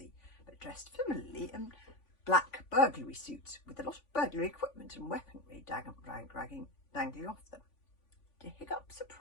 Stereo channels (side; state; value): right; late; 3.5 ms